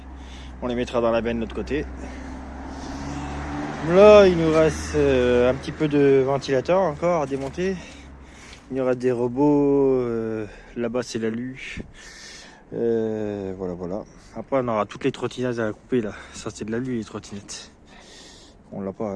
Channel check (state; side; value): identical; both; correlation 1.00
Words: On les mettra dans la benne de l'autre côté. Là il nous reste un petit peu de ventilateur encore à démonter. Il y aura des robots, là-bas c'est l'alu, voilà voilà. Après on aura toutes les trottinettes à couper là, ça c'est de l'alu les trottinettes. On l'a